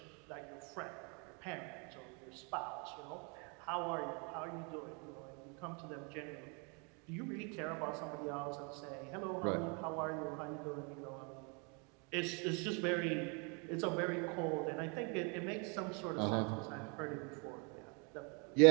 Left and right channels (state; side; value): quieter; left; 34.4 dB